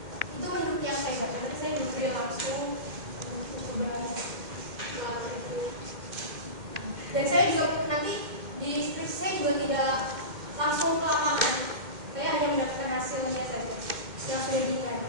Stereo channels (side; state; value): left; late; 2.1 ms